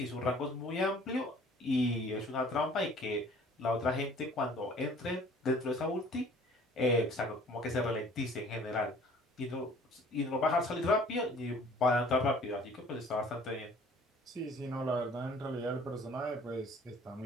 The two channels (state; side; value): normal; both; correlation 0.52